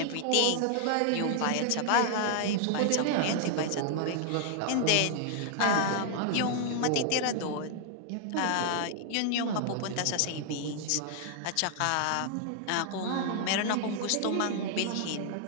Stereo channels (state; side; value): different; both; correlation 0.00